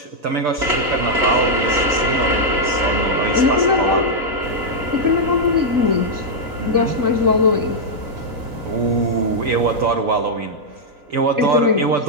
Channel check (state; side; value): late; left; 3.9 ms